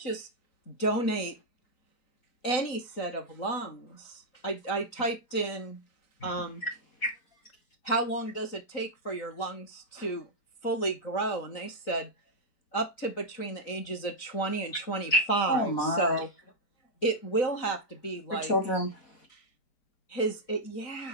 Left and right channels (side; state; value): right; late; 3.9 ms